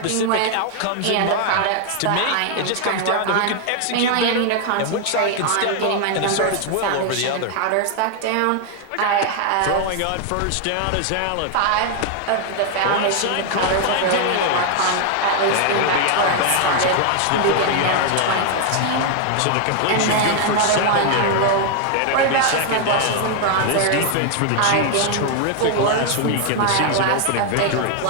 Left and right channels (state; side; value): different; both; correlation 0.00